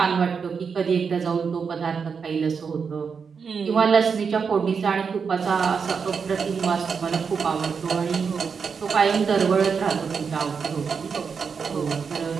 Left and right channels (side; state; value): left; quieter; 5.9 dB